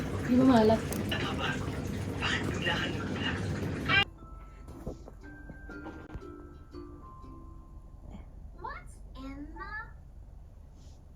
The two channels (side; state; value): both; identical; correlation 1.00